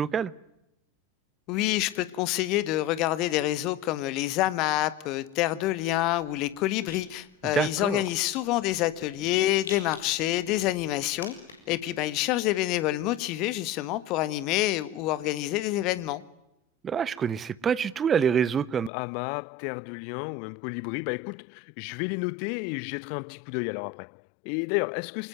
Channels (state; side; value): drops out; right; at 18.9 s